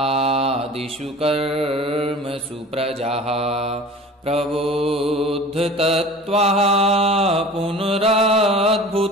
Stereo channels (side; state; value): both; normal; correlation 0.41